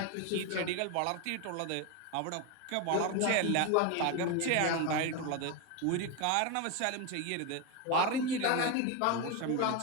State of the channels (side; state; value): both; different; correlation 0.02